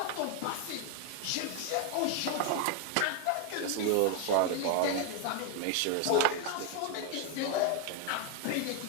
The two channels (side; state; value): both; different; correlation 0.01